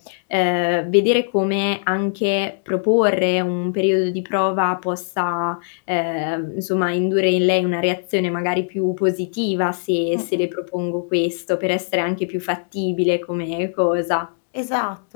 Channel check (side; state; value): right; silent; digital silence